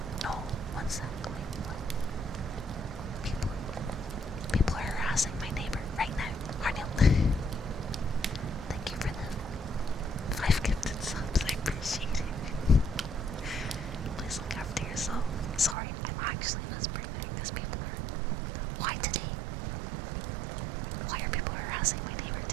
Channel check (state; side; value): drops out; left; at 15.8 s